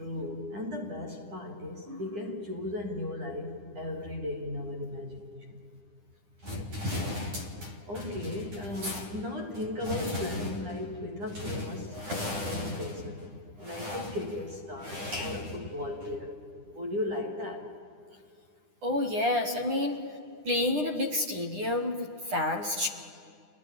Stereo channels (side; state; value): left; late; 9.9 ms